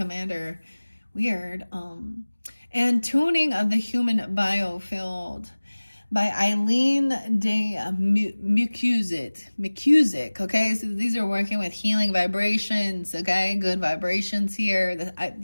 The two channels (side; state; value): both; inverted; correlation -1.00